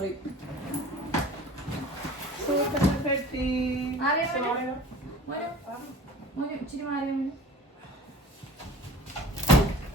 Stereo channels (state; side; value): normal; both; correlation 0.43